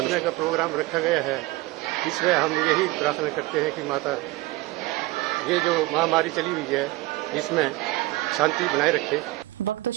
का प्रोग्राम रखा गया है, इसमें हम यही प्रार्थना करते हैं कि माता ये जो महामारी चली हुई है इसमें शांति बनाए रखे। वक्त तो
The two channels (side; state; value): left; quieter; 19.8 dB